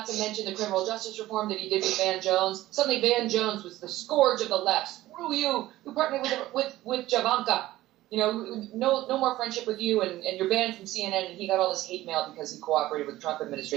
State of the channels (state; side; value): quieter; left; 16.0 dB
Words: to mention the criminal justice reform that he did with Van Jones. Suddenly Van Jones was the scourge of the left. Screw you. You partnered with Javanka. no more friendship with you, and you're banned from CNN, and he got all this hate mail because he cooperated with the Trump